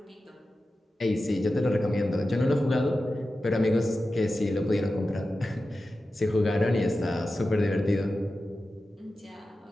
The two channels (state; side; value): normal; both; correlation 0.93